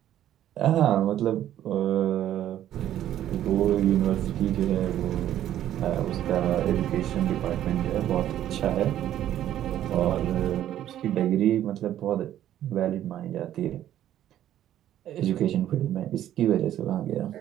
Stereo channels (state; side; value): quieter; left; 11.9 dB